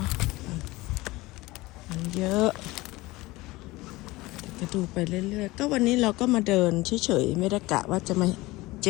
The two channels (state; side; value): quieter; right; 20.4 dB